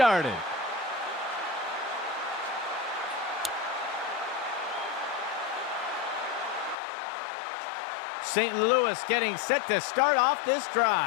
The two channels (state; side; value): drops out; right; at 6.8 s